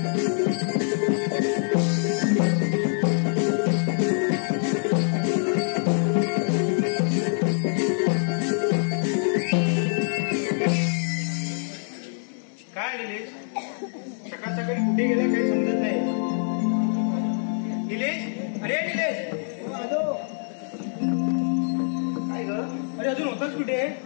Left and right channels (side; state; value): right; silent; 61 dB below the other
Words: काय निलेश सकाळ सकाळी कुठे गेला काही समजत नाही निलेश अरे निलेश काय ग अरे अजून होताच कुठे